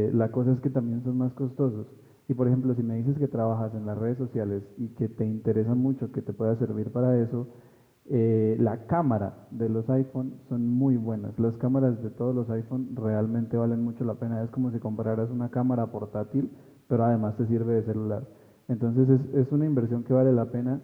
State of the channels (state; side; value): identical; both; correlation 1.00